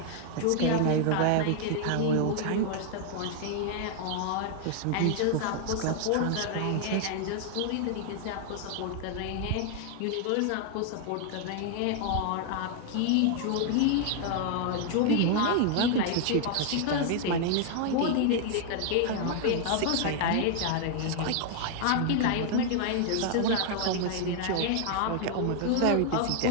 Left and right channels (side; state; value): both; different; correlation 0.00